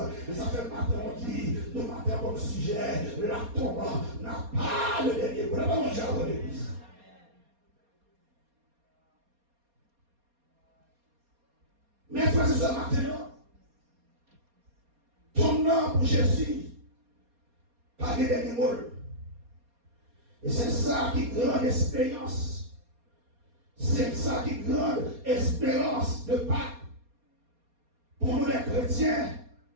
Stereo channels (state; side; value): late; left; 4.2 ms